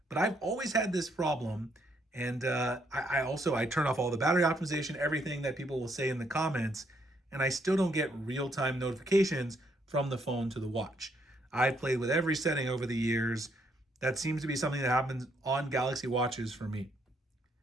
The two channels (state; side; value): normal; both; correlation 0.72